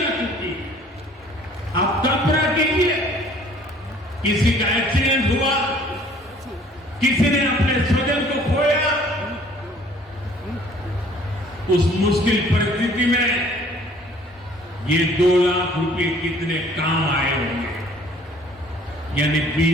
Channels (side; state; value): both; normal; correlation 0.55